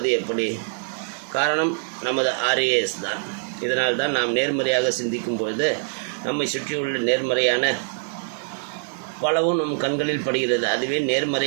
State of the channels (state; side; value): silent; left; 63 dB below the other